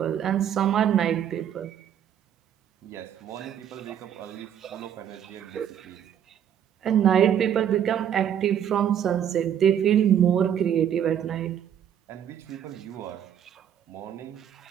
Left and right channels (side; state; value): left; quieter; 9.5 dB